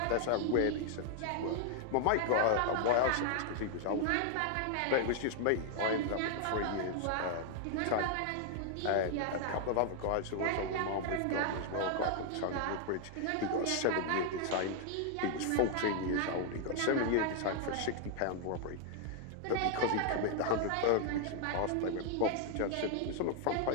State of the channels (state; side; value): different; both; correlation 0.00